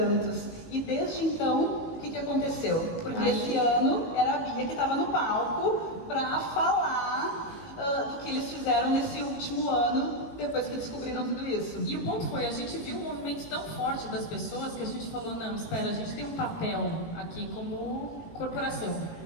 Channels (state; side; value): late; right; 18 ms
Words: E desde então, o que aconteceu? Porque esse ano era a Bia que estava no palco para falar do que eles fizeram nesse último ano, depois que descobriram tudo isso. E o ponto foi, a gente viu um movimento tão forte das pessoas que a gente falou, não, espera, a gente tem um papel aqui como corporação,